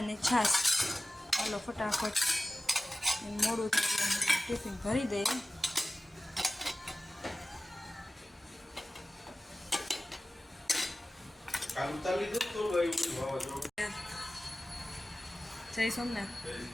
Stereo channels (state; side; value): normal; both; correlation 0.96